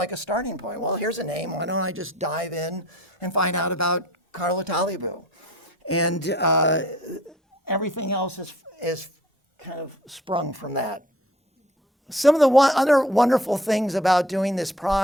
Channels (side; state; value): both; normal; correlation 0.51